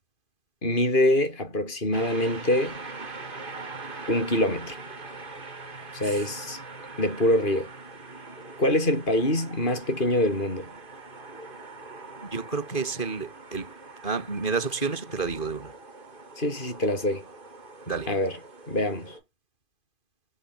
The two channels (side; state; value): right; late; 2.5 ms